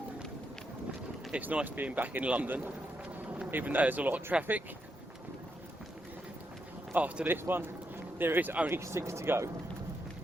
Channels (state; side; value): normal; both; correlation 0.82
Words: It's nice being back in London, even though there's a lot of traffic. After this one, there is only 6 to go.